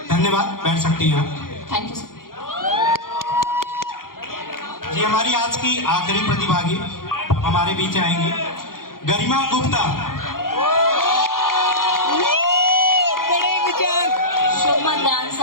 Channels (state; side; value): late; right; 0.91 ms